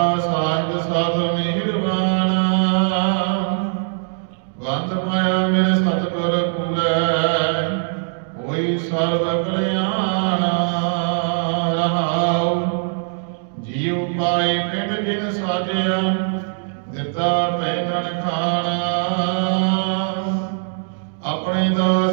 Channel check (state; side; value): silent; left; digital silence